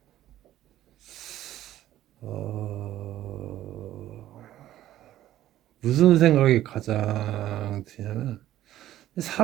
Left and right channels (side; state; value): left; quieter; 13.4 dB